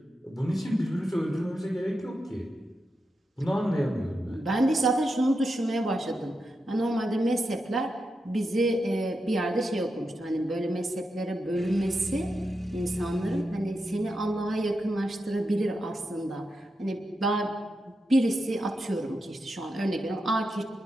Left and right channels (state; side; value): normal; both; correlation 0.87